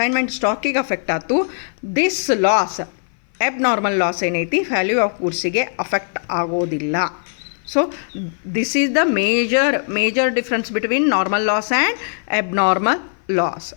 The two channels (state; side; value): silent; right; 59 dB below the other